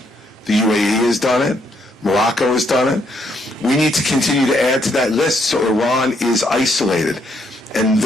The UAE has done it. Morocco has done it. We need to continue to add to that list so Iran is isolated. And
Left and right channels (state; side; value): normal; both; correlation 0.73